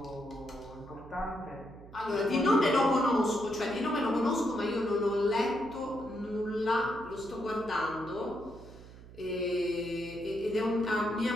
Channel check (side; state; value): right; noise; hum, 18 dB below the sound